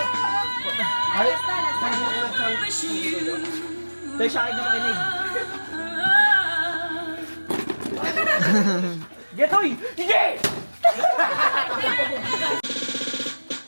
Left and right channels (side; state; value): both; inverted; correlation -1.00